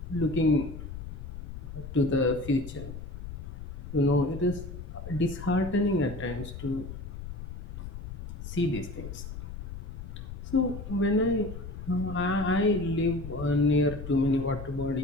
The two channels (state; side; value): noise; left; rumble, 9 dB below the sound